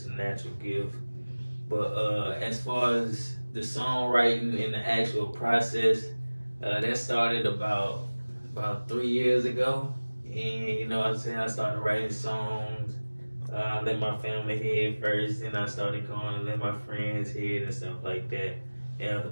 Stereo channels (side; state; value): both; inverted; correlation -1.00